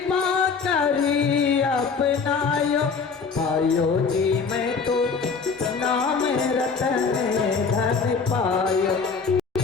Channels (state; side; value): quieter; right; 5.2 dB